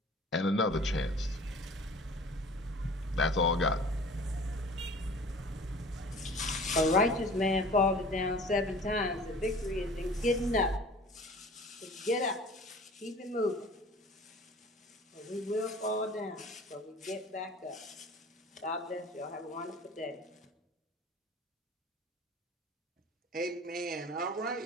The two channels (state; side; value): normal; both; correlation 0.45